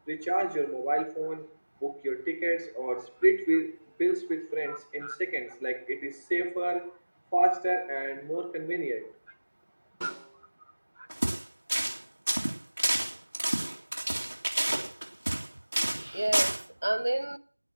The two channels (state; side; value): inverted; both; correlation -1.00